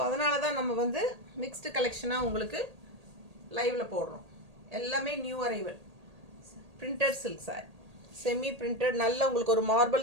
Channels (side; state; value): left; late; 1.8 ms